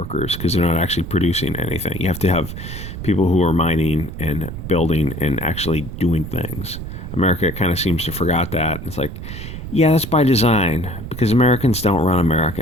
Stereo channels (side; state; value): right; noise; rumble, 9 dB below the sound